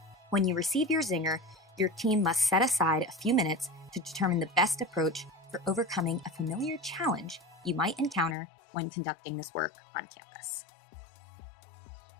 When you receive your zinger, your team must set aside a few minutes to determine the best approach for overcoming a familiar challenge you might encounter when conducting this work on campus.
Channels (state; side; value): drops out; right; at 8.3 s